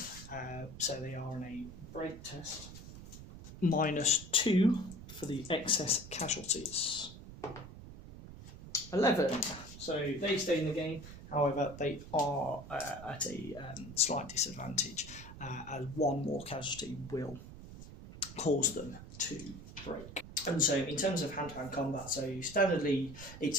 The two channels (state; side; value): noise; right; rumble, 14 dB below the sound